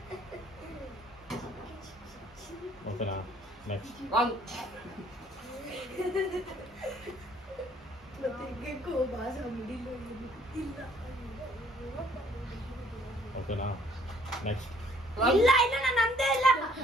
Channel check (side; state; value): both; normal; correlation 0.61